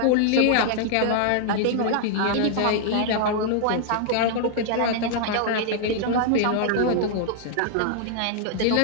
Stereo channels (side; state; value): both; different; correlation -0.01